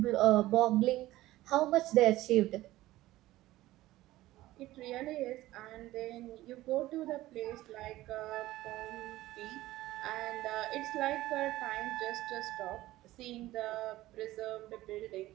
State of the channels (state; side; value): quieter; left; 16.5 dB